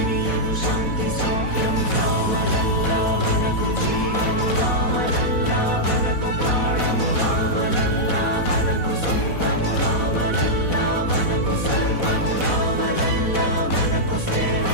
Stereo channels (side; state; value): right; late; 4.1 ms